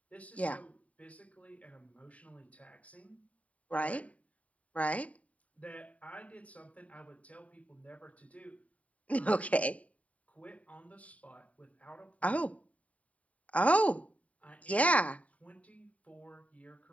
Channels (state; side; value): late; right; 0.068 ms